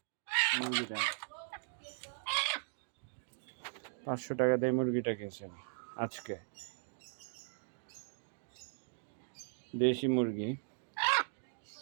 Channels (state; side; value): silent; left; digital silence